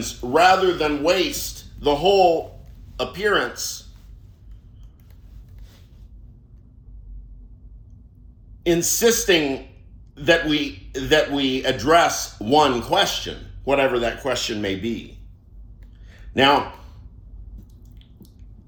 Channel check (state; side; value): identical; both; correlation 1.00